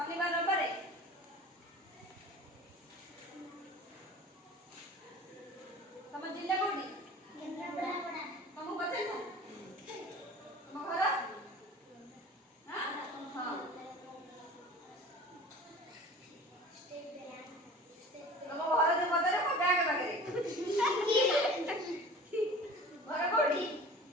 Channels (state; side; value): normal; both; correlation 0.41